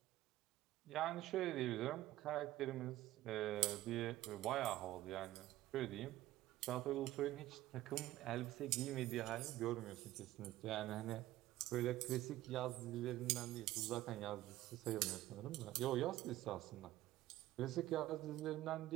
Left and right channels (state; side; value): quieter; left; 15.5 dB